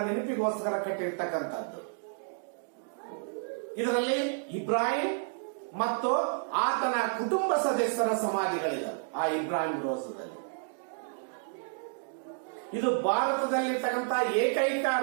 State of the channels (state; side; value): silent; left; digital silence